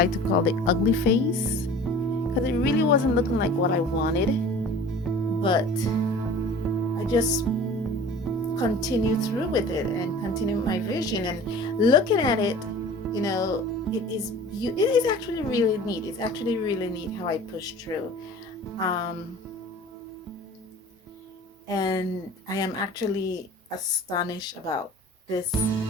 to call the ugly phase, because it really wasn't looking like what I wanted, but I just continued through with it and continued my vision, and looking at it, you know, it is actually really neat. It's actually really neat how I pushed through. And I am actually astonished about this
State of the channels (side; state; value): both; normal; correlation 0.43